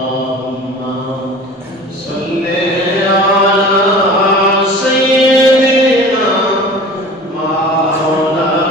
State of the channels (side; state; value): both; normal; correlation 0.40